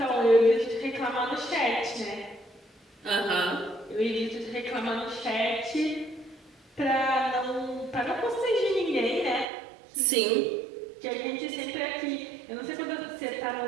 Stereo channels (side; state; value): left; drops out; at 9.5 s